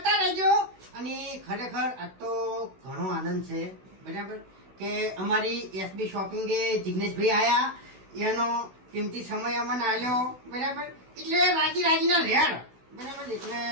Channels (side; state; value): left; late; 16 ms